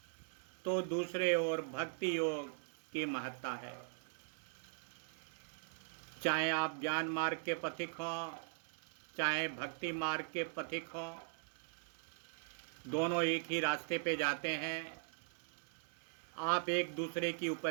तो दूसरे ओर भक्ति योग की महत्ता है। चाहे आप ज्ञान मार्ग के पथिक हों, चाहे भक्ति मार्ग के पथिक हों, दोनों एक ही रास्ते पे जाते हैं। आप एक दूसरे की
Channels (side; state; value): left; silent; 51 dB below the other